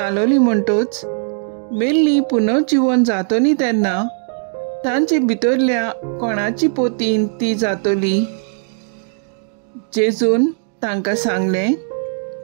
म्हणटोच मेल्ली पुनर्जीवन जातली तेन्ना तांचे भितरल्या कोणाची पोतीन ती जातली. जेजून तांकां सांगलें,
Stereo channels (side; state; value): left; silent; 65 dB below the other